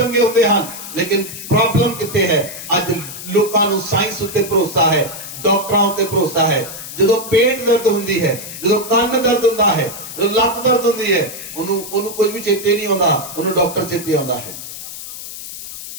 होते हैं। लेकिन प्रॉब्लम कितने है, आज लोगों को साइंस उत्ते भरोसा है, डॉक्टरों उत्ते भरोसा है। जो पेट दर्द होती है, जो कान दर्द होता है, जो लत दर्द होती है, उन्होंने कुछ भी चेते नहीं आता, उन्होंने डॉक्टर चेते आता है।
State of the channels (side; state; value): left; noise; hiss, 11 dB below the sound